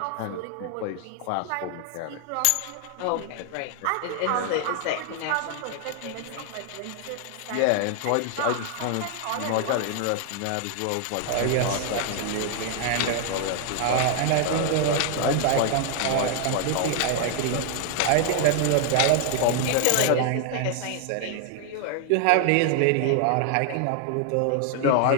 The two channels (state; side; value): different; both; correlation 0.00